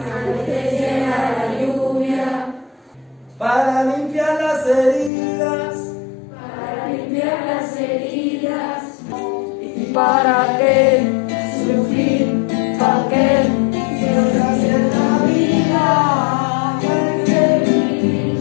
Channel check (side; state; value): right; drops out; at 5.1 s